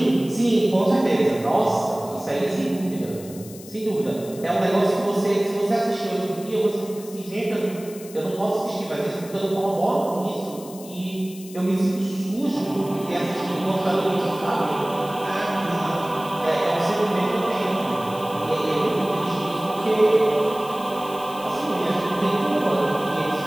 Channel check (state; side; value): noise; left; hiss, 18 dB below the sound